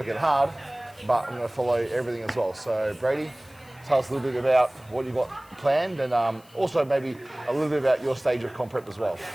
hard, but I'm going to follow everything as well. So Brady, tell us a little bit about what you've got planned, and also maybe a little bit about your stage of comp prep as well.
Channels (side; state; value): left; noise; hiss, 27 dB below the sound